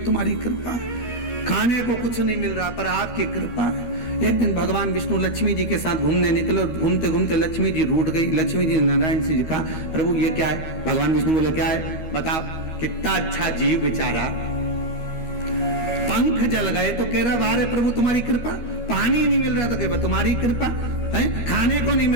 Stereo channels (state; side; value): late; right; 13 ms